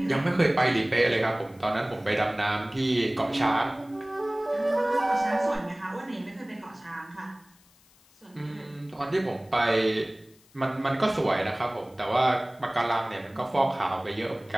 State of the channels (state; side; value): noise; left; hiss, 30 dB below the sound